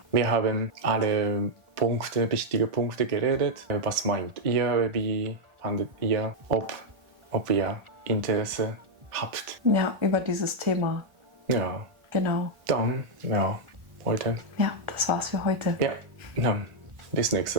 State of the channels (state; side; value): late; left; 1.4 ms